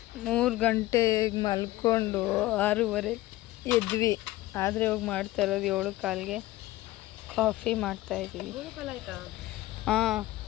3 ಗಂಟೆಗೆ ಮಲ್ಕೊಂಡು 6:30 ಎದ್ವಿ. ಆದರೆ ಹೋಗಿ ಮಾಡ್ತಾ ಇರೋದು 7:15ಗೆ ಕಾಫಿ ಮಾಡ್ತಾಯಿದ್ದೀವಿ. ಹಾಂ,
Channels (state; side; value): quieter; right; 17.2 dB